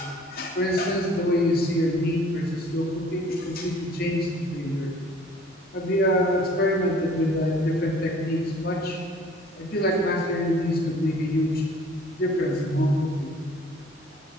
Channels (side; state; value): both; normal; correlation 0.53